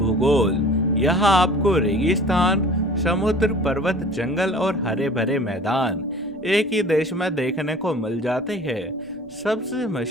यहाँ आपको रेगिस्तान, समुद्र, पर्वत, जंगल और हरे भरे मैदान एक ही देश में देखने को मिल जाते हैं। सबसे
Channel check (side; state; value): right; noise; rumble, 28 dB below the sound